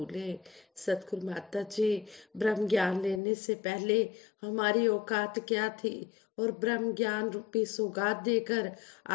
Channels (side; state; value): right; drops out; at 3.2 s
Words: सतगुरु माता जी, ब्रह्म ज्ञान लेने से पहले हमारी औकात क्या थी, और ब्रह्म ज्ञान रूपी सौगात देकर